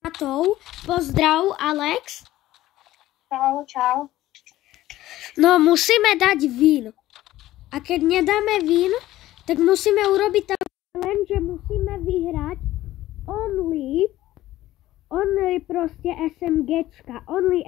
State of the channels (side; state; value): right; quieter; 15.2 dB